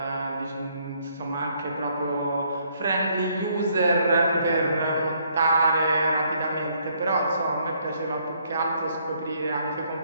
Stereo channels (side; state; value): both; inverted; correlation -0.68